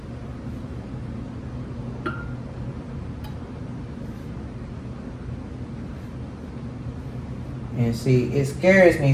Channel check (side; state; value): both; identical; correlation 1.00